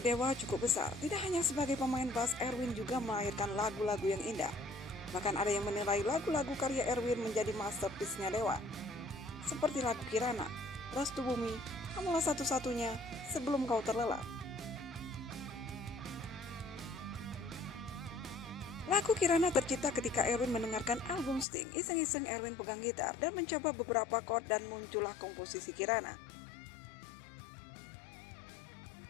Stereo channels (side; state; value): right; drops out; at 21.5 s